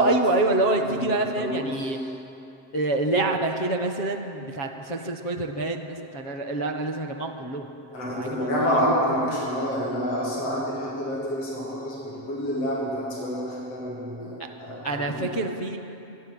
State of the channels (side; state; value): right; late; 7.6 ms